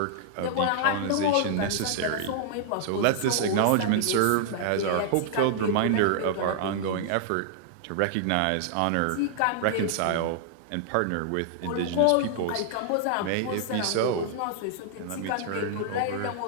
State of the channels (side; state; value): both; different; correlation -0.01